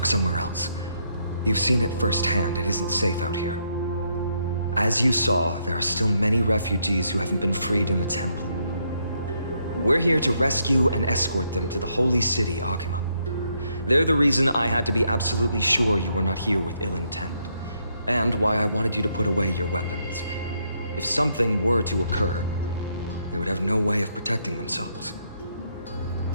somewhere else. You've seen it firsthand. It isn't safe out here. As you saw, there are still many refugees who haven't been freed in the temple. We're here to rescue and escort them to the holy city, Akima. They're the reason I had to be absolutely sure you were not here with ill intent, and why I wanted you to put away your weapons. If something were to occur, they would have no way of protecting themselves.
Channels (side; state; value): both; inverted; correlation -0.75